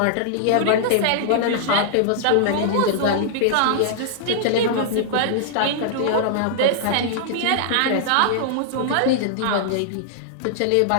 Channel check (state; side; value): different; both; correlation -0.01